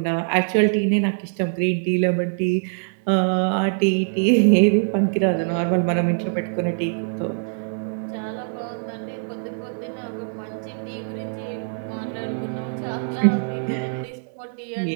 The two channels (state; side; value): silent; left; 63 dB below the other